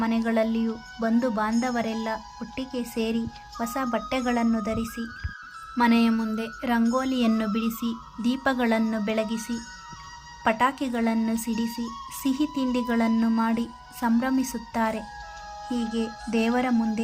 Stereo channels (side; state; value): both; identical; correlation 1.00